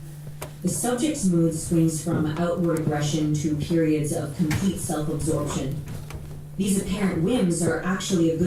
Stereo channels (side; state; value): both; identical; correlation 1.00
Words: The subject's mood swings from outward aggression to periods of complete self-absorption. These apparent whims are actually a